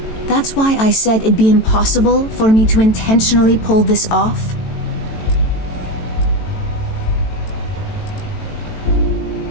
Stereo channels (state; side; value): late; right; 18 ms